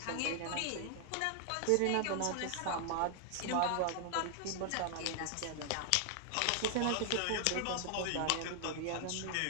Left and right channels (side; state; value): both; different; correlation 0.00